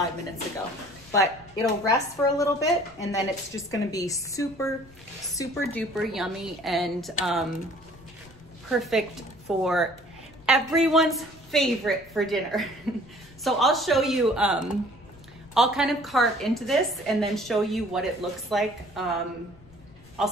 minutes ago. But it'll rest for a little bit, and then it's just gonna be super, super duper yummy and perfect for everyone's favorite for dinner. So I'll show you, I'll kind of carve into this and then show you what it looks like. I'll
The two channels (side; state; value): left; noise; rumble, 24 dB below the sound